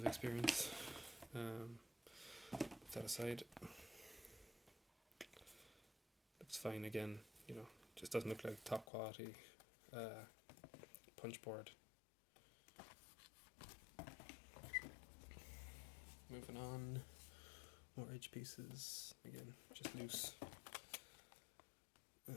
experience. Put that aside. Looks fine again, you know, just doesn't look like top quality punch board. Moving on, more edge pieces, again, just loose.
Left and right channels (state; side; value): drops out; right; at 8.8 s